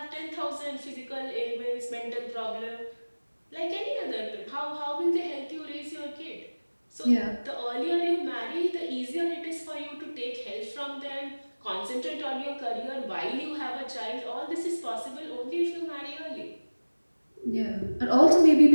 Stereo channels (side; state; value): both; inverted; correlation -1.00